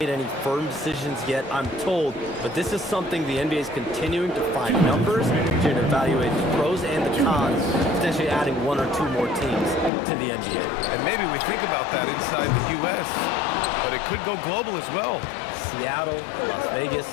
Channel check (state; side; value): drops out; right; at 9.9 s